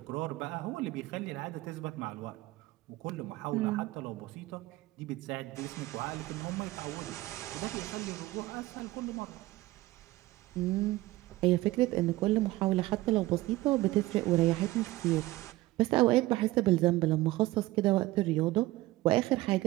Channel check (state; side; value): quieter; left; 18.2 dB